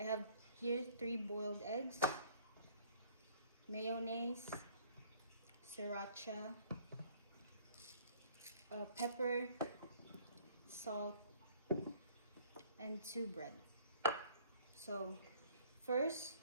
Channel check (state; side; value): inverted; both; correlation -0.57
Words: have here 3 boiled eggs, mayonnaise, sriracha, pepper, salt, and 2 bread. So first,